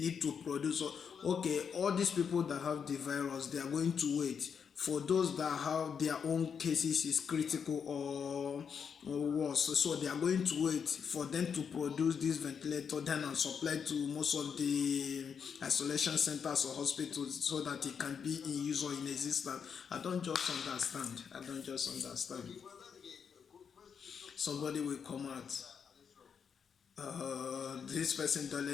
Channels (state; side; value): quieter; right; 6.8 dB